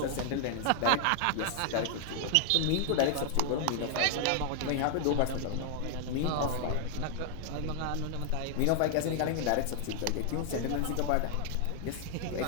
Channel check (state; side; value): different; both; correlation 0.00